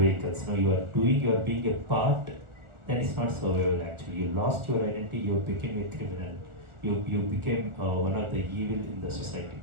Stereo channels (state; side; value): late; left; 1.4 ms